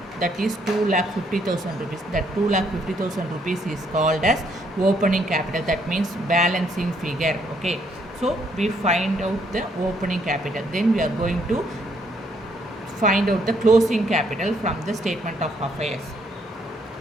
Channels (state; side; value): normal; both; correlation 0.70